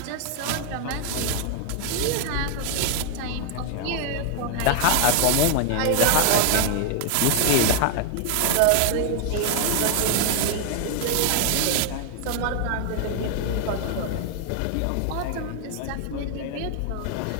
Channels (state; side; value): different; both; correlation 0.00